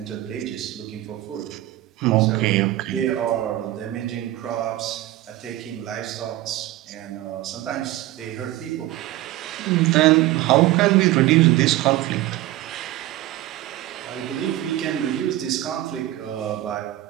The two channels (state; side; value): quieter; left; 15.7 dB